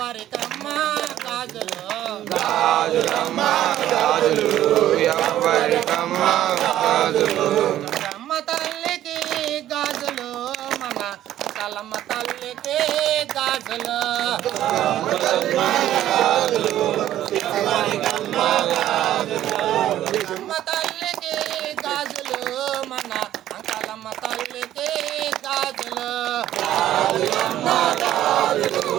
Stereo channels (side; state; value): left; quieter; 12.7 dB